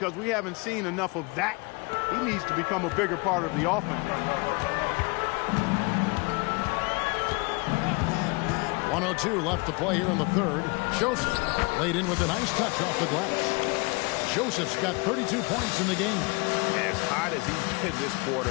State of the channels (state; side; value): quieter; right; 28.0 dB